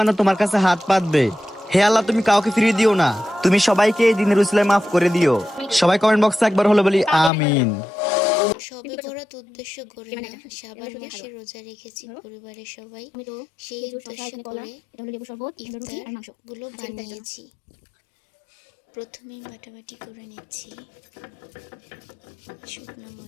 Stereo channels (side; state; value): right; drops out; at 7.3 s